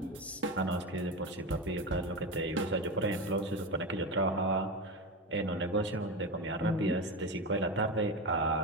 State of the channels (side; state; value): both; normal; correlation 0.20